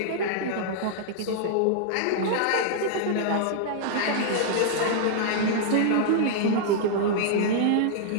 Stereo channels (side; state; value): both; different; correlation -0.01